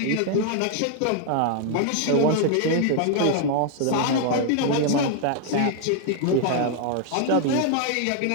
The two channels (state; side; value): different; both; correlation 0.00